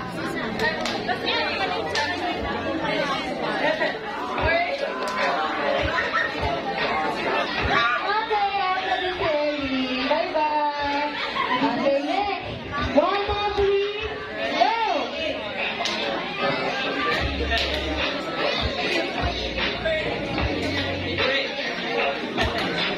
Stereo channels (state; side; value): identical; both; correlation 1.00